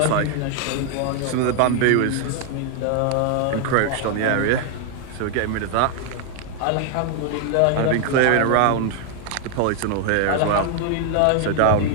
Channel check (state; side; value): different; both; correlation 0.00